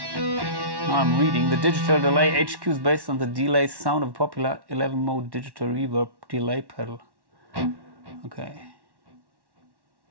Now I'm reading. The digital delay HQ is based on the delay sound of a popular 11-mode digital reverb delay pedal. Okay.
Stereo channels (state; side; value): late; left; 1.1 ms